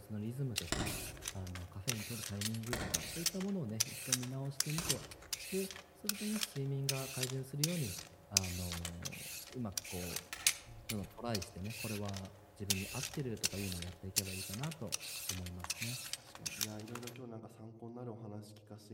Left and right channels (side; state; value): both; identical; correlation 1.00